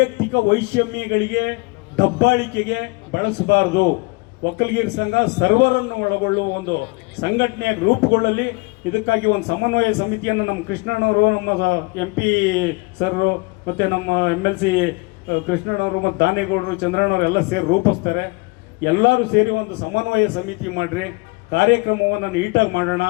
ವೈಷಮ್ಯಗಳಿಗೆ, ದಬ್ಬಾಳಿಕೆಗೆ ಬಳಸಬಾರದು. ಒಕ್ಕಲಿಗರ ಸಂಘ ಸರ್ವರನ್ನು ಒಳಗೊಳ್ಳುವ ಒಂದು ಸಂಘಟನೆಯಾಗಿ ರೂಪುಗೊಳ್ಳಲಿ. ಇದಕ್ಕಾಗಿ ಒಂದು ಸಮನ್ವಯ ಸಮಿತಿಯನ್ನು ನಮ್ಮ ಕೃಷ್ಣಣ್ಣವರು, ನಮ್ಮ MP ಸರ್ರು, ಮತ್ತು ನಮ್ಮ MLC ಕೃಷ್ಣಣ್ಣವರು ಮತ್ತು ದಾನೇಗೌಡರು, ಚಂದ್ರಣ್ಣವರು ಎಲ್ಲ ಸೇರಿ ರೂಪಿಸ್ತಾರೆ. ಎಲ್ಲರೂ ಸೇರಿ ಒಂದು ಸಮನ್ವಯ ಸಮಿತಿ ಮಾಡಿರಿ, ಕಾರ್ಯಕ್ರಮವನ್ನು ನೀಟಾಗಿ ಮಾಡೋಣ.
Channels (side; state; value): right; quieter; 27.0 dB